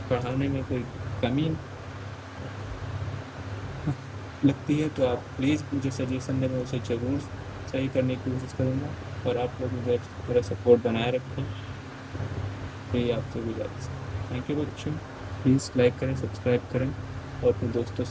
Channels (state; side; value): identical; both; correlation 1.00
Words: पढ़ाने में कोई कमी लगती है तो आप प्लीज़ मुझे सजेशन दें, मैं उसे ज़रूर सही करने की कोशिश करूँगा। और आप लोग मुझे मेरा सपोर्ट बनाए रखें, यही आपसे गुजारिश है। थैंक यू बच्चों, प्लीज़ लाइक करें, सब्सक्राइब करें और अपने दोस्तों